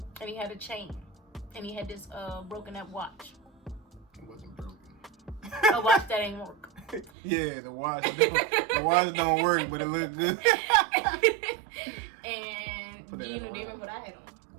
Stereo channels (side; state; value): left; drops out; at 7.1 s